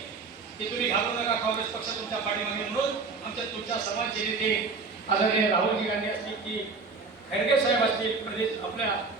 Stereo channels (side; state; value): left; quieter; 4.4 dB